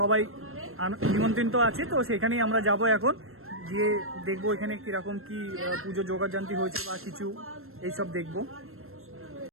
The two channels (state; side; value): late; left; 0.62 ms